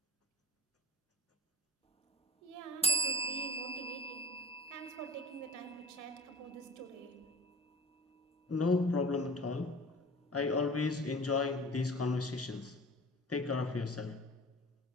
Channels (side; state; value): both; normal; correlation 0.39